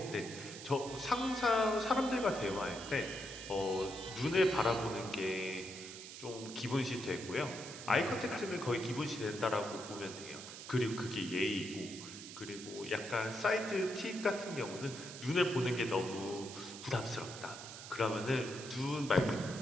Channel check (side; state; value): right; noise; hiss, 12 dB below the sound